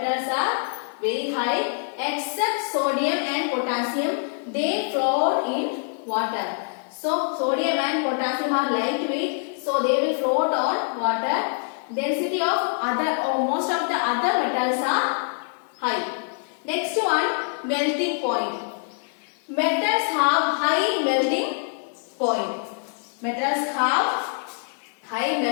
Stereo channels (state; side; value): silent; right; 60 dB below the other